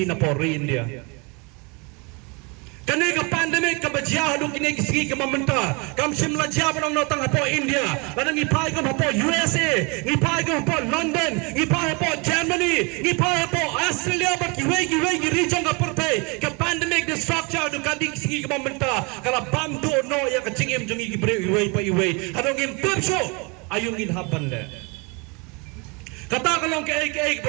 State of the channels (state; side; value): quieter; left; 30.2 dB